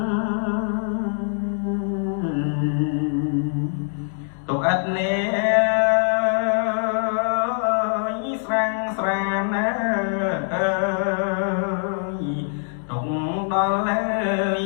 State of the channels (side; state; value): right; silent; 63 dB below the other